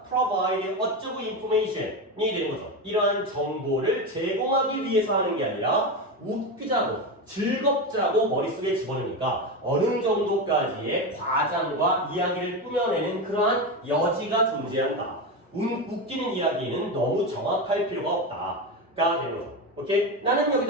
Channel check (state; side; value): normal; both; correlation 0.17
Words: provide 어쩌고 information이 되는 거죠. 이러한 정보를 제공하기 위해서 하는 게 아니라 웃기자고 즐겁자고 머릿속에 집어넣으니까 어느 정도까지의 과장과 이야기를 꾸며내는 그러한 여지가 존재한다. 웃기는 이야기는 너무 정확할 필요가 없다가 되는 거죠. 오케이? 나는